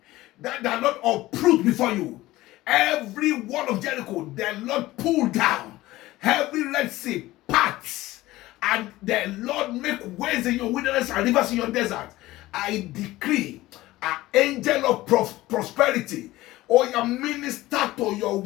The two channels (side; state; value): right; quieter; 17.5 dB